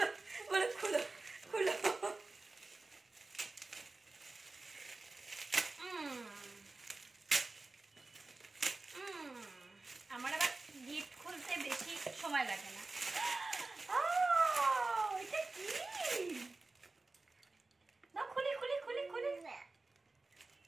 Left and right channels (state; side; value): quieter; left; 3.4 dB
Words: বলো, খুলো খুলো। আমার আবার গিফট খুলতে বেশি সময় লাগে না। এটা কি? দাও, খুলি খুলি খুলি খুলি।